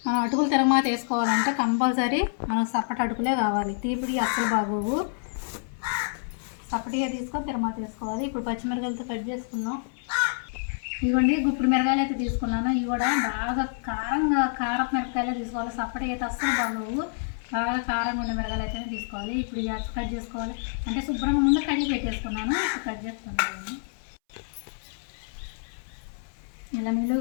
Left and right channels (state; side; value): silent; right; 60 dB below the other